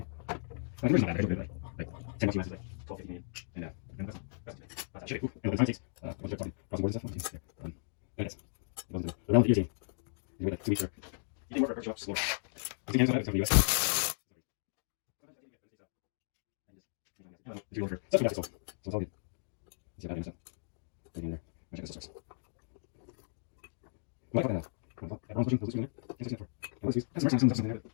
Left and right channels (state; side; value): silent; right; digital silence